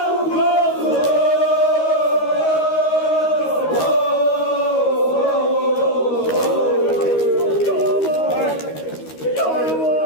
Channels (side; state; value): right; late; 13 ms